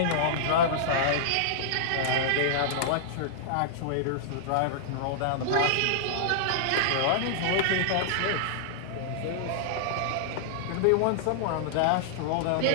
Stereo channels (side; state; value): both; different; correlation -0.02